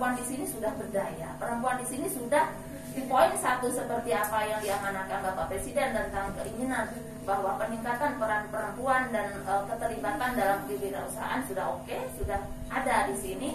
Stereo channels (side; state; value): both; identical; correlation 1.00